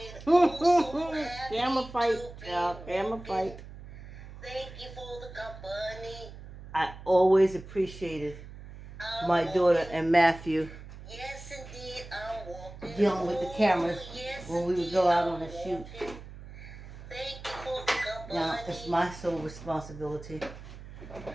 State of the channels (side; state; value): right; noise; hum, 15 dB below the sound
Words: Camera fight, y'all. Camera fight. I always appreciated my daughter and Matthew dealing with the cameras when we would go out on a shoot. Now, it's my sole responsibility.